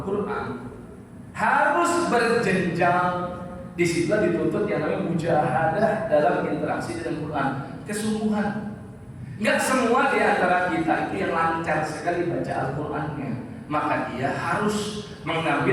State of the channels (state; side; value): identical; both; correlation 1.00